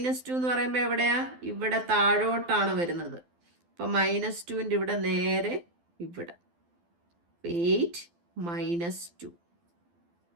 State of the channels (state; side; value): late; left; 12 ms